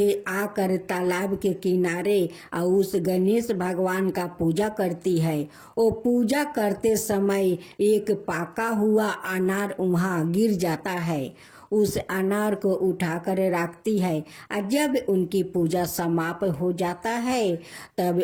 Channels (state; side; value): identical; both; correlation 1.00